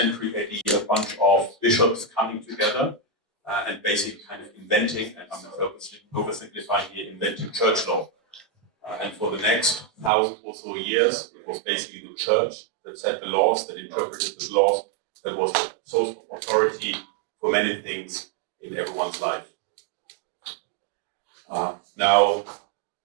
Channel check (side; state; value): left; drops out; at 10.1 s